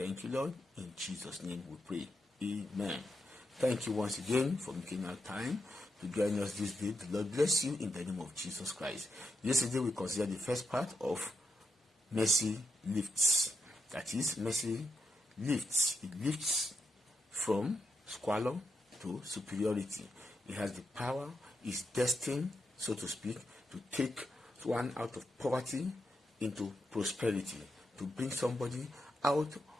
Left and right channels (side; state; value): both; normal; correlation 0.84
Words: you, Lord. In Jesus' name we pray. Amen. Thank you once again for making our time to join us this day. The Lord bless you in the name of Jesus Christ. Yesterday we considered the first part of mercy lifts. That is, mercy lifts. It lifts from squalor to superiority. It has the power, is destined, so to speak, to take one out of poverty into prosperity, to bring somebody out